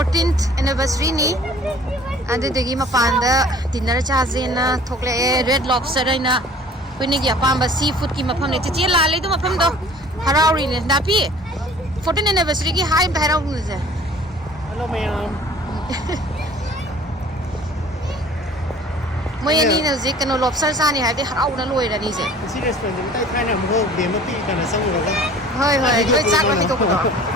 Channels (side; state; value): both; normal; correlation 0.49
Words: anniversary ni adudagi mapanda dinner chajena thokle red lobster aina khuni gi apamba seafood ki mafam ne chichi la le du mafam do harauri ne dapi 14th anniversary ki hi bhairau nu je hello ma'am moi ani na je kano lobster sa ni ha de harau na loi ra ni je si restaurant ni tai thai na mo de ma pi kana sang ro ga hoi loi chak ma mi to ko do